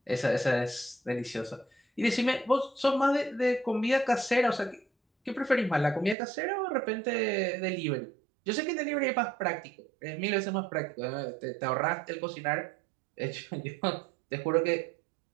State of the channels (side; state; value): left; drops out; at 6.2 s